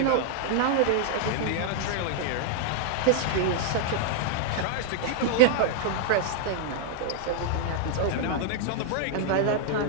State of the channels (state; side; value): different; both; correlation -0.01